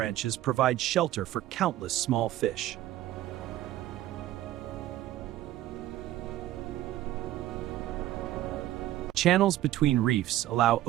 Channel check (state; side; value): quieter; left; 14.3 dB